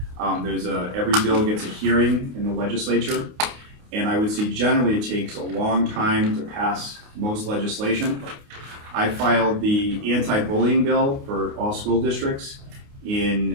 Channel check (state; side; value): late; left; 29 ms